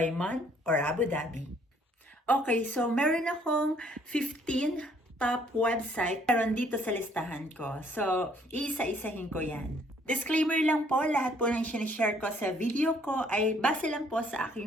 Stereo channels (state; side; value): normal; both; correlation 0.63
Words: man, or Abu Dhabi. Okay, so meron akong 15 top website meron dito sa listahan ko. So, iisa-isahin ko yan. Disclaimer lang po, lahat po ng sinishare ko sa video ko ay base lang po sa